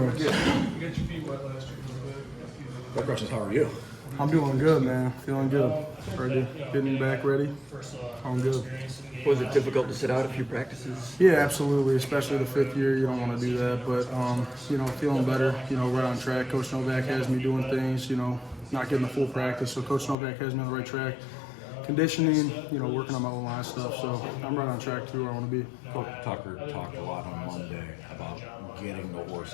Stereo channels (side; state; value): right; drops out; at 20.2 s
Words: Good. My question is, how are you? I'm doing good, man. Feeling good. Ready. Getting back ready. I'm good. Was it difficult to sit out a few practices? Yeah, absolutely. Especially the fifth year, you don't want to do that. But feeling better. Right on track. Coach Novak has me doing things. Not getting the full practice. So Coach Novak has me on the right track. Conditioning. Working on my O-line stuff. So I'm right on track to where I want to be. Coach Tucker talked a lot on Monday about getting the